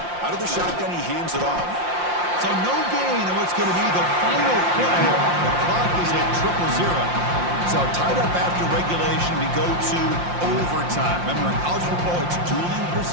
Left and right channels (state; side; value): late; left; 5.7 ms